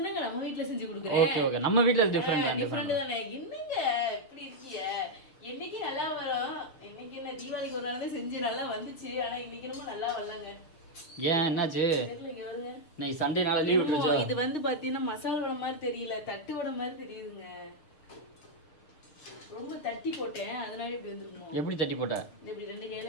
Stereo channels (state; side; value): late; right; 6.3 ms